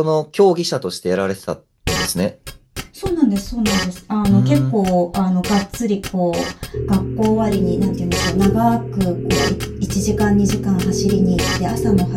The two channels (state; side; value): identical; both; correlation 1.00